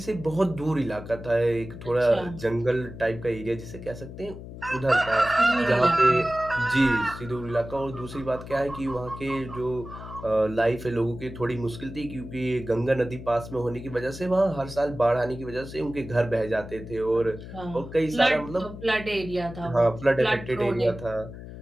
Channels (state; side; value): noise; left; hum, 12 dB below the sound